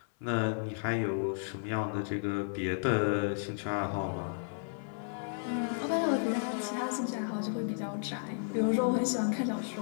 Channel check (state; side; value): silent; right; 56 dB below the other